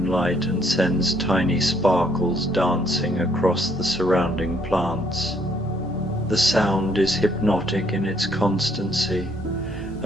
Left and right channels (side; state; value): both; normal; correlation 0.67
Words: and sends tiny sparkles dancing across the surrounding plants. The sound is hypnotic in its constancy,